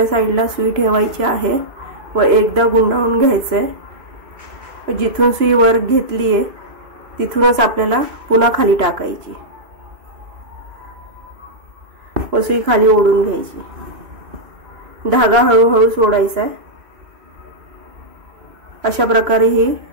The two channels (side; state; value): left; late; 2.5 ms